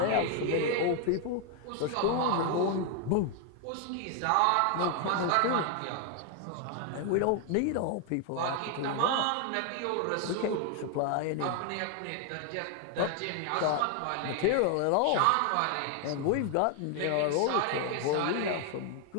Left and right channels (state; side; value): different; both; correlation 0.00